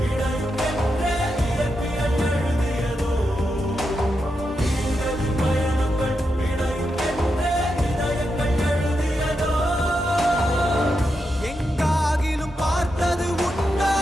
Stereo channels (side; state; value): both; normal; correlation 0.86